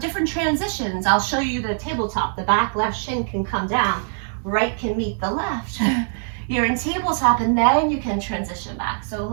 transitions, I'll show you the tabletop. The back left shin can come down, right can meet the left. You're in tabletop and then you can transition back. So a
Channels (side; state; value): left; silent; digital silence